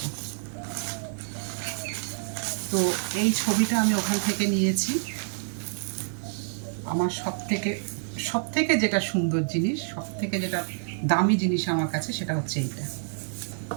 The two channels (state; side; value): silent; left; 55 dB below the other